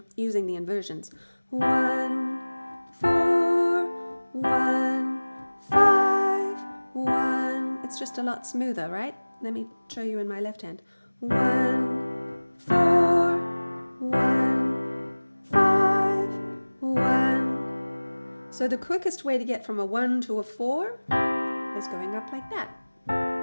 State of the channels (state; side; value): inverted; both; correlation -1.00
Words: using the inversions. 1, 4, 1, 5, 1. It's just a lot smoother, right? Let me show you in my left hand. 1, 4, 1, 5, 1. So the quickest way to get from a 1 to a 4 is going up like that.